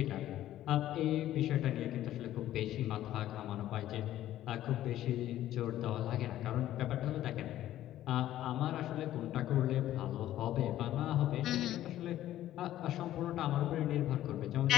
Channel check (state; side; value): quieter; right; 13.2 dB